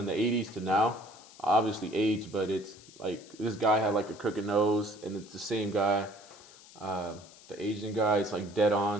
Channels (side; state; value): left; noise; hiss, 22 dB below the sound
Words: the '80s to now, obviously aged, but it's like this guy had like a crooked nose, and it's the same guy. The Asian guy, it's like dead